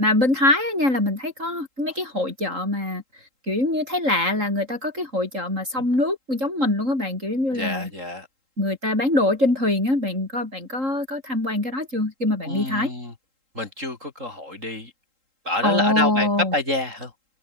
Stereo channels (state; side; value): late; left; 3.8 ms